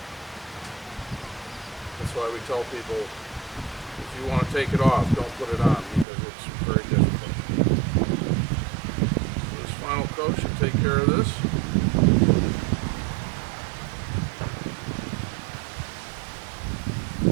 That's why we tell people, if you want to take it off, don't put it on, because it's very difficult. So this final coat should take care of this.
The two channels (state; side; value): drops out; left; at 6.1 s